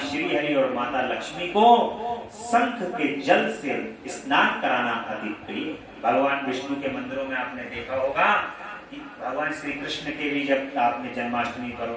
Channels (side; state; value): both; identical; correlation 1.00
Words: हरि और माता लक्ष्मी को शंख के जल से स्नान कराना अति प्रिय। भगवान विष्णु के मंदिरों में आपने देखा होगा कि भगवान श्री कृष्ण के भी जब आपने जन्माष्टमी पर